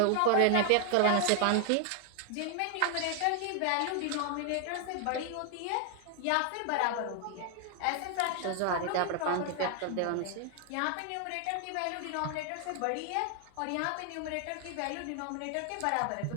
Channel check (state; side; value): different; both; correlation 0.00